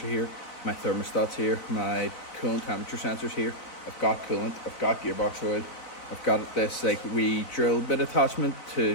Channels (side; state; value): right; late; 4.0 ms